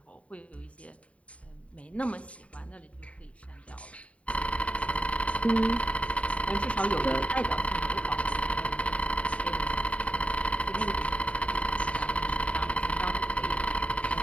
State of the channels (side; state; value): right; late; 0.065 ms